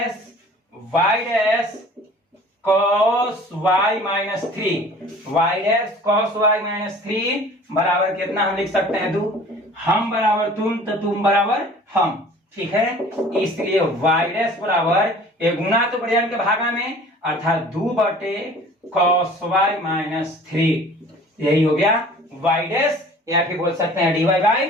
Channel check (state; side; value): normal; both; correlation 0.47